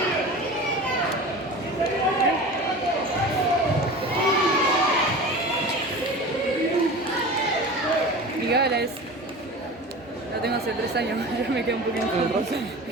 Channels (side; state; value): both; normal; correlation 0.34